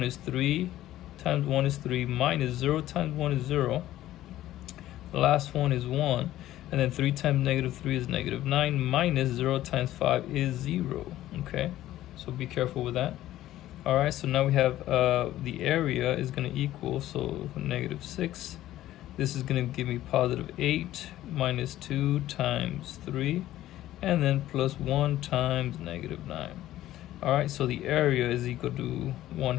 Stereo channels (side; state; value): right; quieter; 14.1 dB